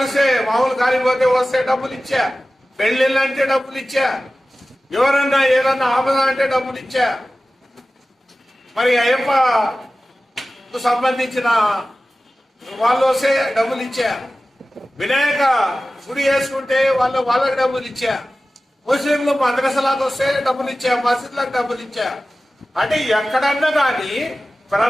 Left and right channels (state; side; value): normal; both; correlation 0.96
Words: కాలిపోతే వస్తే డబ్బులు ఇచ్చా, పెళ్లిళ్ళు అంటే డబ్బులు ఇచ్చా, ఎవరన్నా ఏదన్నా ఆపద అంటే డబ్బులు ఇచ్చా. మరి అయ్యప్పకు సంబంధించిన వాళ్ళు వస్తే డబ్బులు ఇచ్చా, వినాయక గుడి వేసుకుంటే వాళ్ళకి డబ్బులు ఇచ్చా, ముస్లింలు మద్రసాలకు వస్తే డబ్బులు ఇచ్చా, మసీదులకు డబ్బులు ఇచ్చా. అంటే ఎక్కడన్నా కానీ